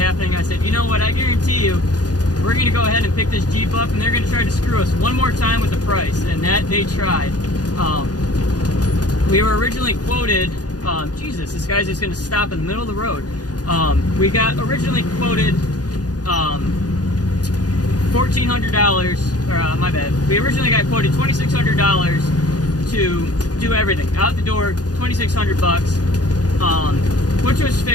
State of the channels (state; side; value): late; right; 0.68 ms